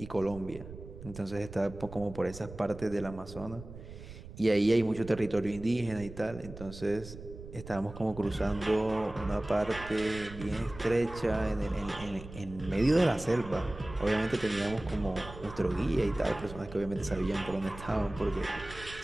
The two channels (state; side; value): noise; right; rumble, 14 dB below the sound